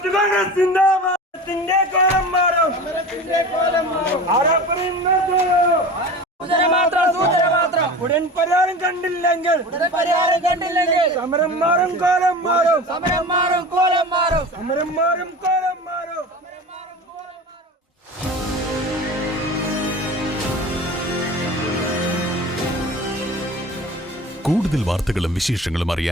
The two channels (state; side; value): normal; both; correlation 0.35